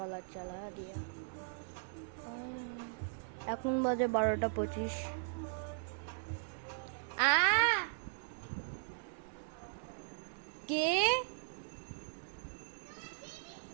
চালা দিয়া। এখন বাজে 12:25। কে?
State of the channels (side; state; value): left; silent; 52 dB below the other